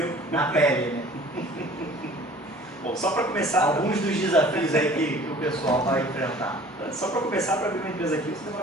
Na pele, né? Bom, só para começar... Alguns dos desafios aí que o pessoal vai enfrentar. Só para começar, para abrir uma empresa aqui, você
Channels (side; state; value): both; normal; correlation 0.48